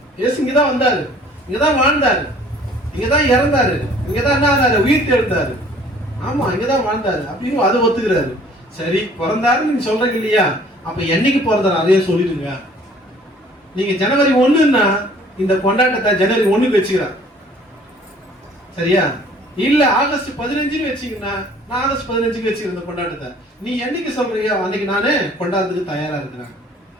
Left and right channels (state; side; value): normal; both; correlation 0.54